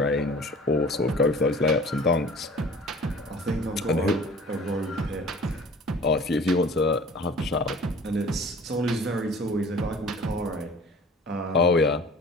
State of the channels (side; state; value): both; normal; correlation 0.45